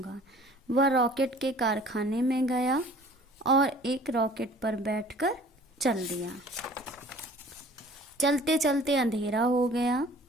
वह रॉकेट के कारखाने में गया और एक रॉकेट पर बैठकर चल दिया। चलते चलते अंधेरा हो गया।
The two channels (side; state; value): both; normal; correlation 0.49